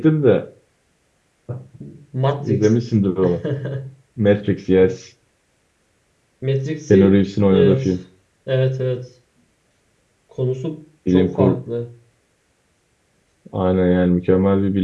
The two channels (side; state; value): both; identical; correlation 1.00